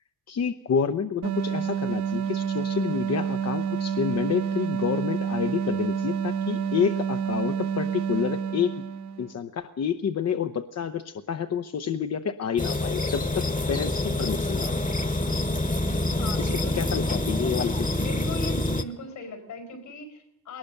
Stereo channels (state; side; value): normal; both; correlation 0.42